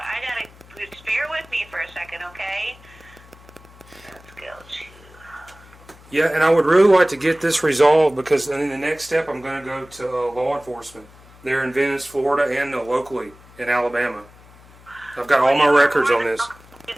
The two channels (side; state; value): left; noise; hum, 24 dB below the sound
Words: gotta... Just bear with me for a second, okay? Let's go to... Yeah, and I would really like to get this resolved because in the next step I'm going to go to law enforcement there in Venice, Florida, and locally in Alabama. I've got all my records on this. Do